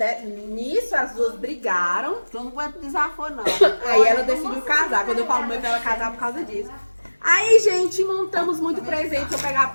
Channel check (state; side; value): inverted; both; correlation -1.00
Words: Nisso as duas brigaram. Tu não aguenta desaforo, não. Aí ela decidiu casar. Quando eu falo mãe, pra ela casar por causa disso. Aí, gente, montamos muito presente. Vou pegar